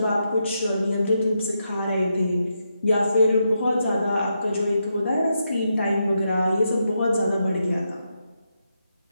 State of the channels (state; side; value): inverted; both; correlation -0.83